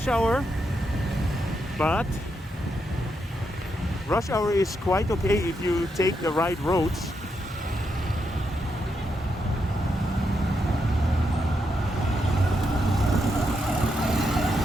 hour, but rush hour is quite okay if you take the right roads.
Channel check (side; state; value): both; normal; correlation 0.82